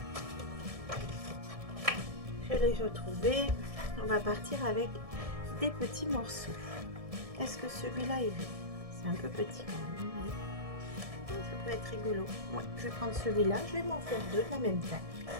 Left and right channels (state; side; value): late; left; 1.7 ms